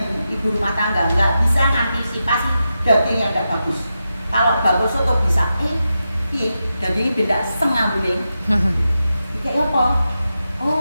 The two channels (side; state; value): both; inverted; correlation -0.89